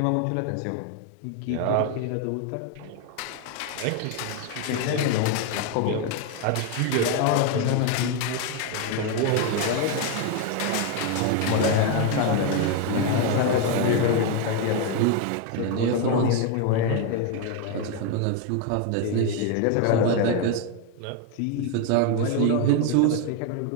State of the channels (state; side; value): different; both; correlation 0.01